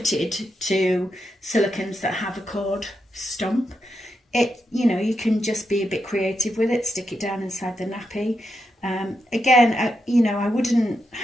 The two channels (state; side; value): normal; both; correlation 0.85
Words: to silicones that have a cord stump. You can just be a bit creative with it, stick it down inside the nappy. Again, I wouldn't